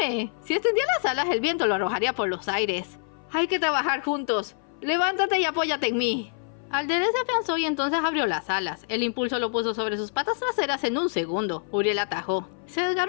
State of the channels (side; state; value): right; silent; 58 dB below the other